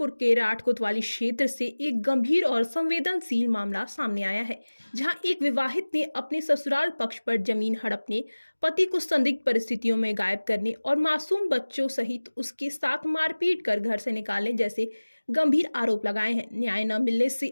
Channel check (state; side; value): inverted; both; correlation -1.00